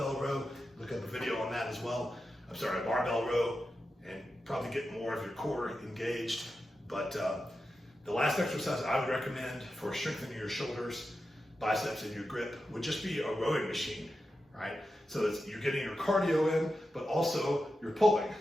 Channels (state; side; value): normal; both; correlation 0.90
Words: row, look up a video on that as well. I'm sorry, a barbell row, and probably get more of your core engaged. But the last exercise I would recommend for strengthening your shoulders, biceps, and your grip would just be a rowing machine, right? So you're getting your cardio in, but also you're pulling.